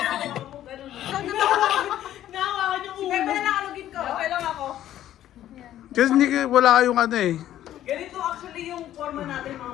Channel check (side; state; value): right; quieter; 12.4 dB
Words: Nahawakan yung ulo. Sige, nakalugin ko. Okay lang ako. Kasi hindi, wala kayong ano eh. Ganito actually yung forma natin mga